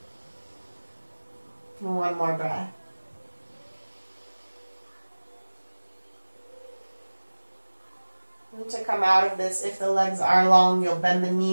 and 1 more breath. And to come out of this, if the legs are long, you'll bend the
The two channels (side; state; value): both; inverted; correlation -1.00